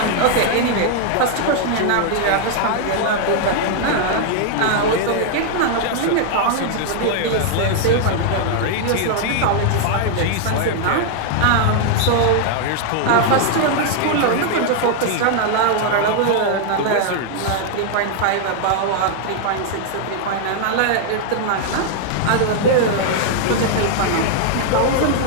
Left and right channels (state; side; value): different; both; correlation 0.00